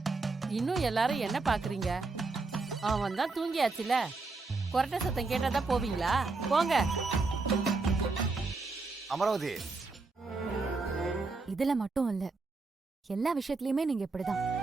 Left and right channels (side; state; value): left; quieter; 3.8 dB